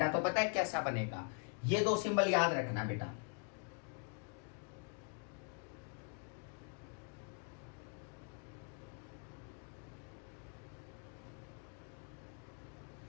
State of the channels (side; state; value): right; quieter; 39.5 dB